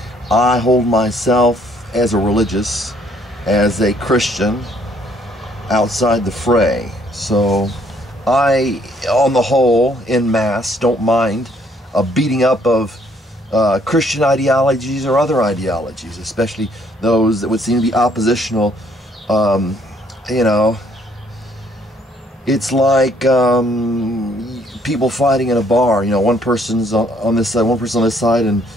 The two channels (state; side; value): normal; both; correlation 0.65